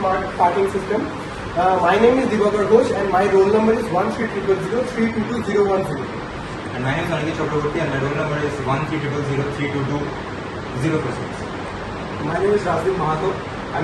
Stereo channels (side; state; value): both; identical; correlation 1.00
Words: parking system. My name is Divakar Ghosh and my roll number is 13003221010. And my name is Aniket Chakraborty and my roll number is 13003220026. My name is Rajiv Mahato